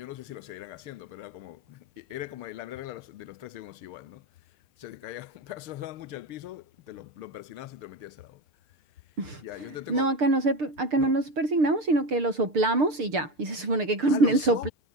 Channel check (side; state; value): left; late; 6.6 ms